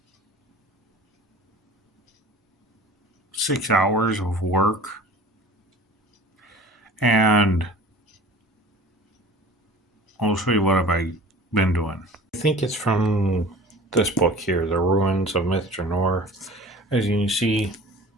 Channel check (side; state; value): both; normal; correlation 0.43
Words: 6 hours of work. And I'll show you what I've been doing. I think it's from this book here, The Ruins of Myth Drannor. As you can see,